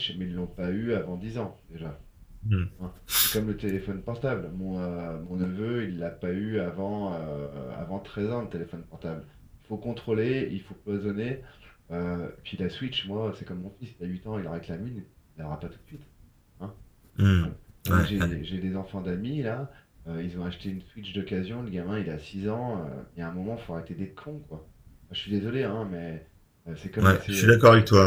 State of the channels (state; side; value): identical; both; correlation 1.00